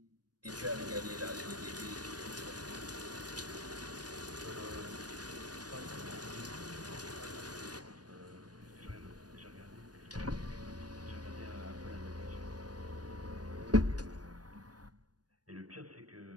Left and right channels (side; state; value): left; late; 0.69 ms